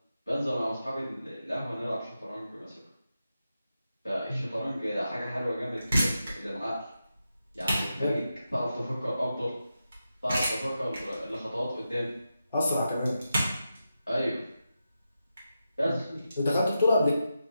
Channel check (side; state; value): both; inverted; correlation -0.89